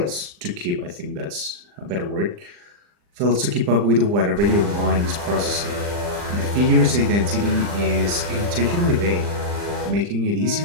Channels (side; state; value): left; late; 40 ms